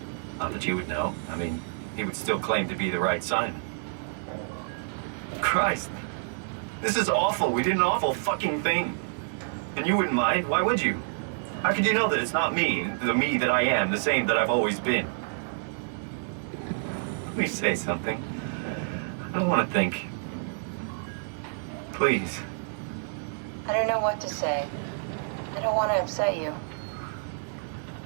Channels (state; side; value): silent; left; 59 dB below the other